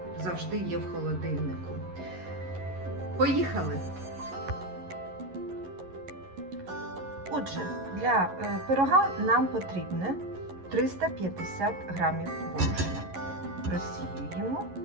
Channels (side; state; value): left; late; 11 ms